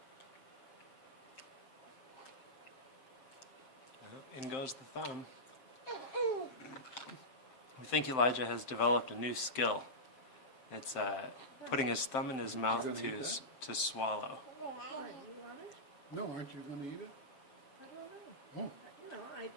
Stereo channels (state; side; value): late; right; 7.7 ms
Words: In goes the thumb. I think Elijah has developed a new skill. It's putting his thumb in his mouth gonna eat to swallow. Why, you want it? No, aren't you going to eat it? I don't know.